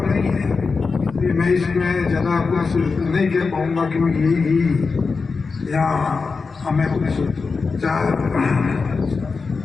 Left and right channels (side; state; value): right; quieter; 4.6 dB